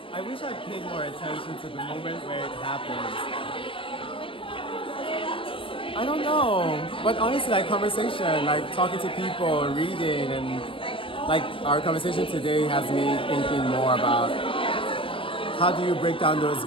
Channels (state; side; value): late; right; 0.25 ms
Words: I wish I paid more attention to the moment where it happens. I don't know, but honestly, conversation, talking to people, reading, and our conversation today has me thinking more about how do you break down those